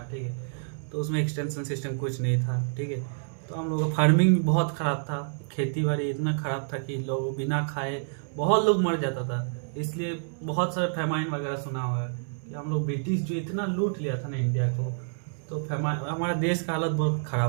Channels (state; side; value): silent; left; 59 dB below the other